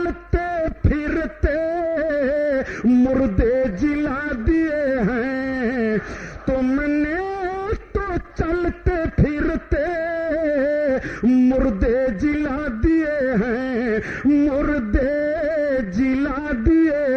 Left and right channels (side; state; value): both; identical; correlation 1.00